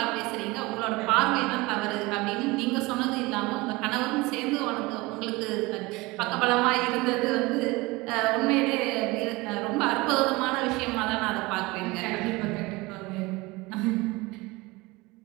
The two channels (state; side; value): quieter; left; 22.8 dB